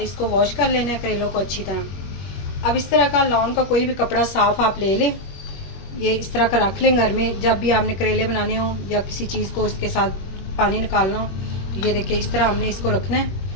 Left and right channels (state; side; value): late; right; 21 ms